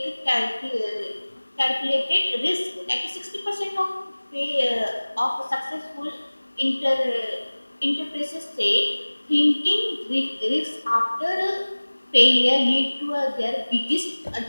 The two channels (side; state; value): both; inverted; correlation -1.00